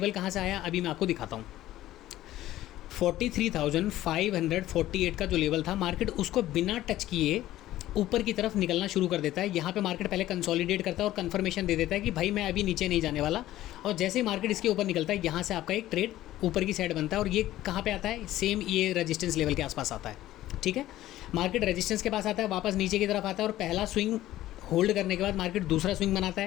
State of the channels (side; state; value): right; quieter; 14.6 dB